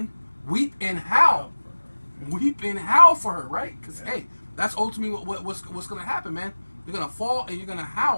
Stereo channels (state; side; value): inverted; both; correlation -1.00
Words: weep and howl. Weep and howl for her, right? Because, Yeah. hey, that's ultimately what's going to happen, man. You're going to fall and you're going to